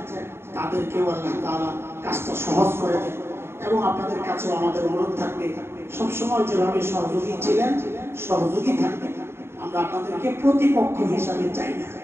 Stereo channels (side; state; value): left; late; 0.12 ms